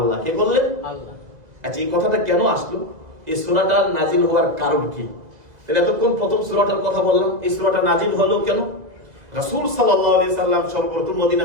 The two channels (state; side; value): late; left; 2.0 ms